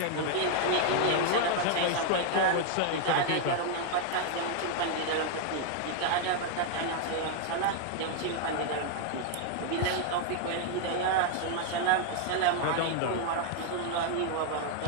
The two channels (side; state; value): both; different; correlation 0.00